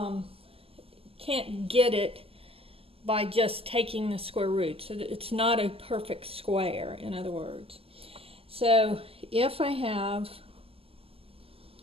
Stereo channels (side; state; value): left; late; 0.28 ms